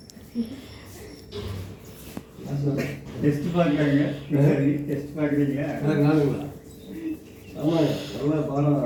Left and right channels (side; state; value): both; identical; correlation 1.00